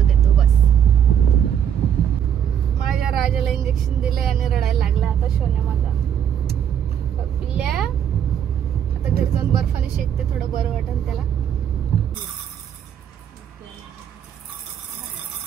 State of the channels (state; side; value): quieter; left; 9.0 dB